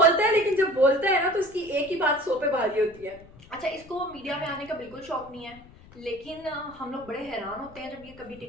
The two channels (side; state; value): left; noise; rumble, 22 dB below the sound